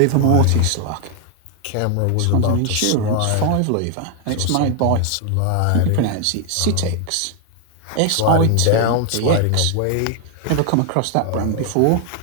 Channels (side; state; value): both; different; correlation 0.00